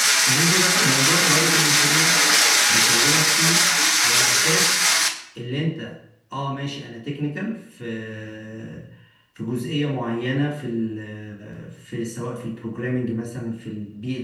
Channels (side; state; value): both; identical; correlation 1.00